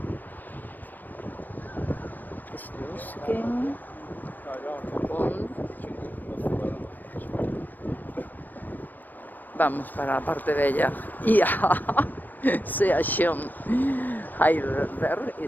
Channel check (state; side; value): late; right; 0.089 ms